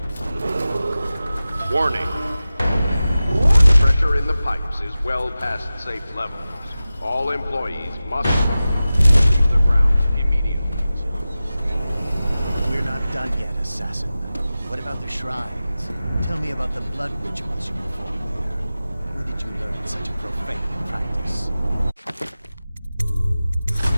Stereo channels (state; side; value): inverted; both; correlation -0.95